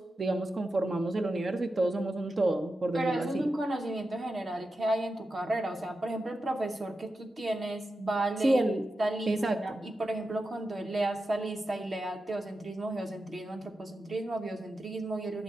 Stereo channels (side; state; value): both; normal; correlation 0.90